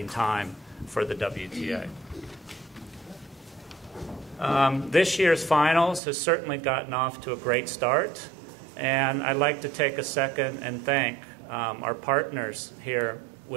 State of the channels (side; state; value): left; drops out; at 6.0 s